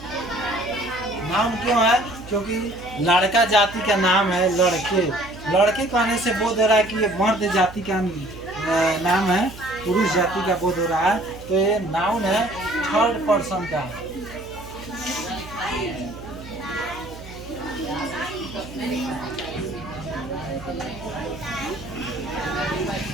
नाम क्यों है, क्योंकि लड़का जाति का नाम है लड़के, लड़के कहने से बोध हो रहा है कि ये मर्द जाति का नाम है, पुरुष जाति का बोध हो रहा है। तो ये नाउन है, थर्ड पर्सन का।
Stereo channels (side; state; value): right; noise; hum, 16 dB below the sound